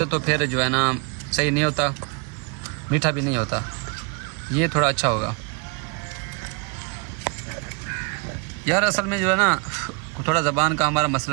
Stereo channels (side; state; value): left; quieter; 32.8 dB